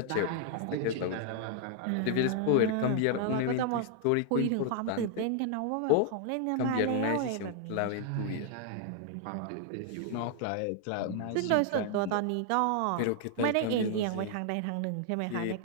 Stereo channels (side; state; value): both; different; correlation 0.00